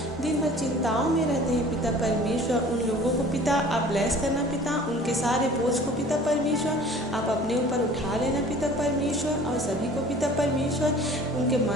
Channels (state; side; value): normal; both; correlation 0.47